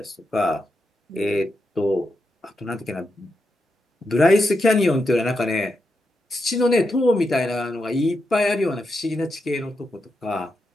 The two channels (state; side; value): normal; both; correlation 0.85